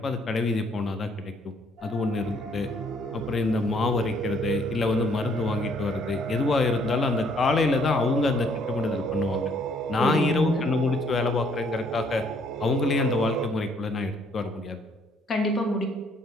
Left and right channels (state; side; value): normal; both; correlation 0.65